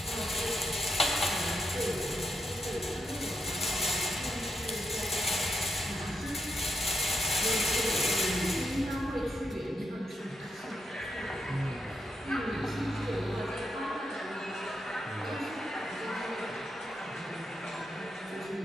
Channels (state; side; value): normal; both; correlation 0.82